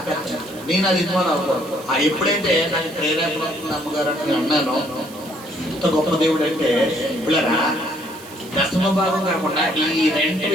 నేను అది ఇన్వాల్వ్ అవ్వకూడదు. ఎప్పుడైతే నాకు ప్రేరేపణ వస్తుంది అమ్మగారు అని అన్నాను, ఇంత గొప్ప దేవుడు అంటే పిల్లరా, దశమ భాగం కాకుండా ఈ రెంట్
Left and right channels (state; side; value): noise; right; hiss, 19 dB below the sound